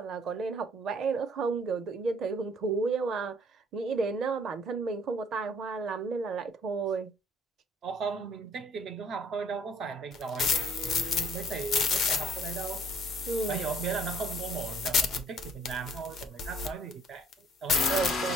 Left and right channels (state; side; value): normal; both; correlation 0.59